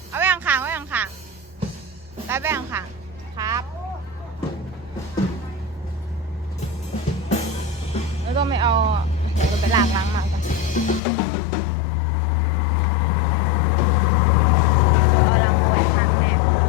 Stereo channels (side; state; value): right; drops out; at 11.0 s